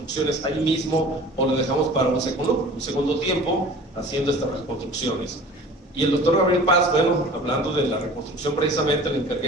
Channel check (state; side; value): normal; both; correlation 0.43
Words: ahí mismo o lo dejamos para un segundo tiempo haciendo estas reconstrucciones. Y el doctor Gabriel Paz, bueno, hablando de la reconstrucción precisamente, le